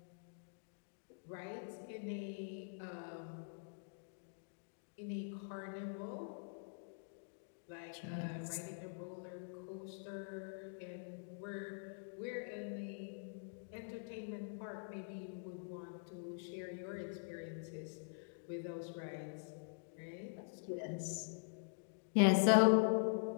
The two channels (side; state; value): right; silent; digital silence